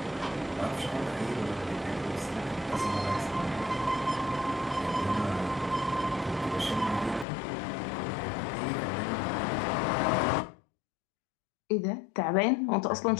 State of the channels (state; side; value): drops out; right; at 7.2 s